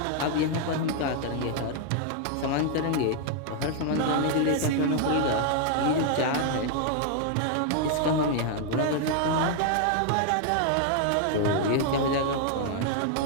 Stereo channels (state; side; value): different; both; correlation 0.00